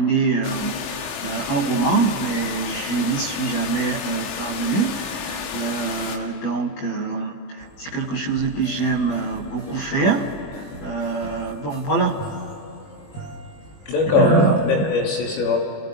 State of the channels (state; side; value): late; right; 21 ms